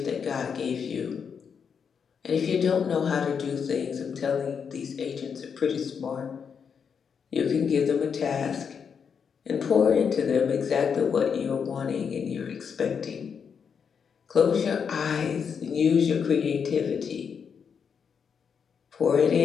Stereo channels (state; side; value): quieter; right; 6.7 dB